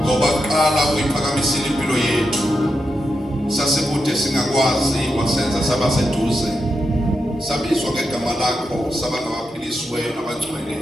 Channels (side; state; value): both; normal; correlation 0.87